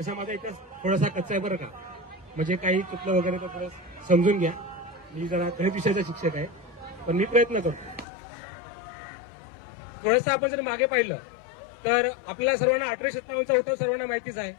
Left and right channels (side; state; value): right; drops out; at 8.1 s